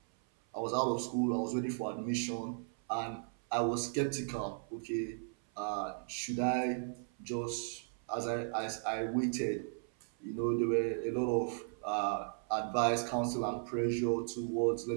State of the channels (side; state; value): left; silent; 54 dB below the other